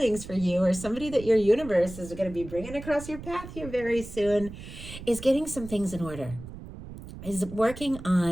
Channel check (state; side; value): noise; right; rumble, 13 dB below the sound